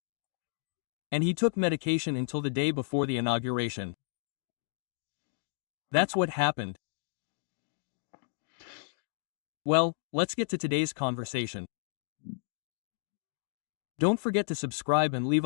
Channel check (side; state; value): right; silent; digital silence